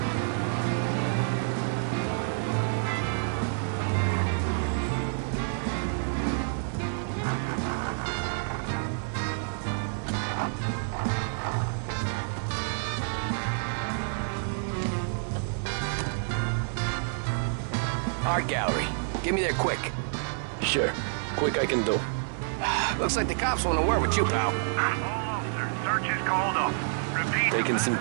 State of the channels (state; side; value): silent; left; digital silence